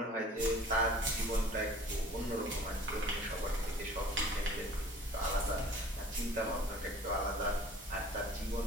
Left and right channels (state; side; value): normal; both; correlation 0.48